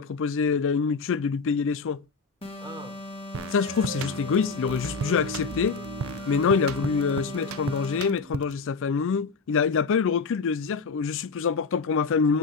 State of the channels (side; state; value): right; quieter; 4.7 dB